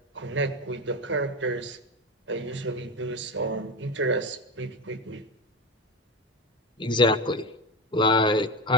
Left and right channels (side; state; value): both; normal; correlation 0.20